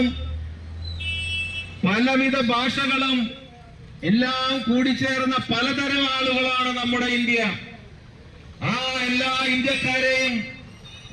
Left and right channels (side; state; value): both; identical; correlation 1.00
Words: പലവിധ ഭാഷകളും എല്ലാം കൂടിച്ചേർന്ന പലതരം ആളുകളാണ് നമ്മുടെ ഇന്ത്യ. ആ എല്ലാ ഇന്ത്യക്കാരെയും